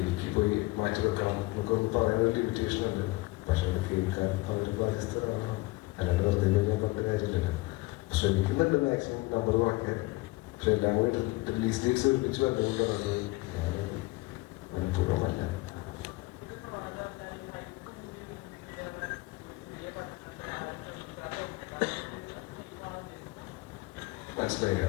എനിക്ക് പോയി മാറ്റി വെക്കണം നമുക്കൊന്ന് പറയാൻ ഒരു ലിമിറ്റേഷൻ ഉണ്ട്. പക്ഷെ അത് കേൾക്കാൻ അവർ ബാധ്യസ്ഥരാണ്. അല്ലാണ്ട് വെറുതെ ഞാൻ പറഞ്ഞ കാര്യമില്ലല്ലോ. ശ്രമിക്കുന്നുണ്ട് മാക്സിമം നമ്പർ കുറയ്ക്കാൻ. പക്ഷെ എല്ലാം കൂടി റിലീസ് ഡേറ്റ്സ് ഒരുമിച്ച് വന്നുകൊണ്ടാണ് ഞാൻ മനഃപൂർവ്വമല്ല. മനസ്സിലായില്ല.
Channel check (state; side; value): quieter; right; 21.7 dB